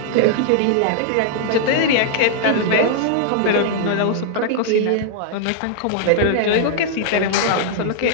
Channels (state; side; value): different; both; correlation -0.01